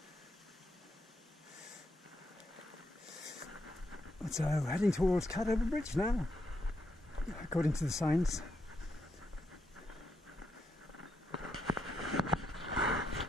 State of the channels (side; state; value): both; normal; correlation 0.80